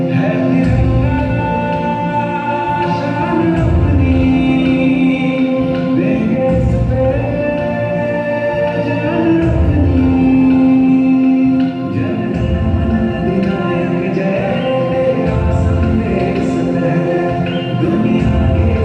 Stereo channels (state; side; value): identical; both; correlation 1.00